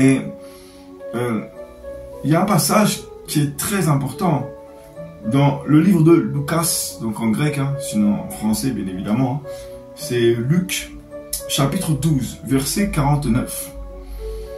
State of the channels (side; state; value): both; identical; correlation 1.00